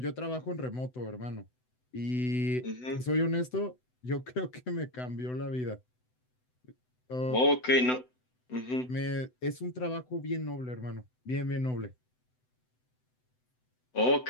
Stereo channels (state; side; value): late; right; 7.9 ms